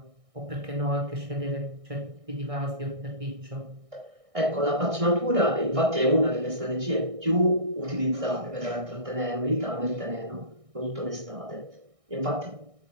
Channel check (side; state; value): left; late; 1.6 ms